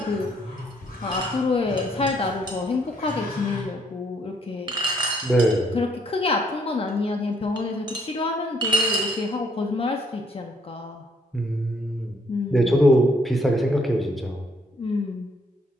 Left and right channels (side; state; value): both; normal; correlation 0.68